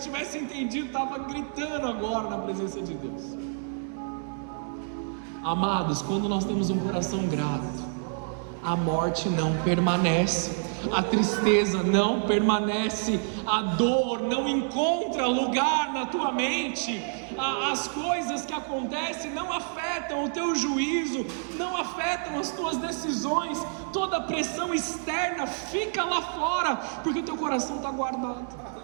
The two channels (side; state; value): left; silent; 59 dB below the other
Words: tivesse entendido, estava gritando agora na presença de Deus. Amados, quando nós temos um coração grato, a morte não permanece, a tristeza não permanece, a dor não encontra lugar na tua mente, as coisas que acontecem não afetam o teu juízo, não afetam as tuas decisões, toda a pressão externa fica lá fora, porque o teu coração está guardado.